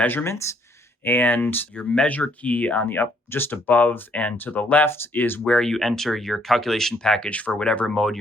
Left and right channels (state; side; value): normal; both; correlation 0.68